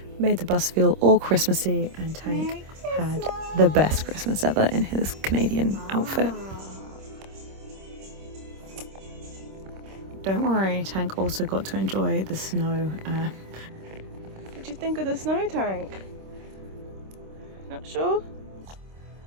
made the bus feel all Christmassy, and Tank had the best Christmas ever in his Canadian outfit. Don't worry, Tank also got to enjoy the snow. What do you think of the snow, Tank? Not sure?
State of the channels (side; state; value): left; late; 26 ms